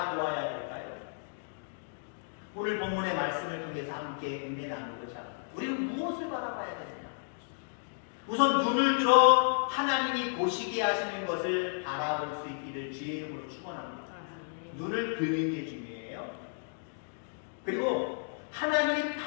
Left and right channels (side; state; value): right; silent; digital silence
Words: 될까요? 오늘 본문의 말씀을 통해서 함께 은혜 나누고자 합니다. 우리는 무엇을 바라봐야 되느냐? 우선 눈을 들어 하나님이 보시게 하시는 것을 바라볼 수 있기를 주의 이름으로 축원합니다. 눈을 드는 게 중요해요. 그리고 하나님이